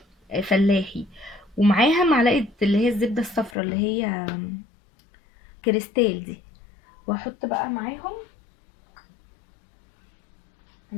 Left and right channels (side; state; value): right; drops out; at 3.6 s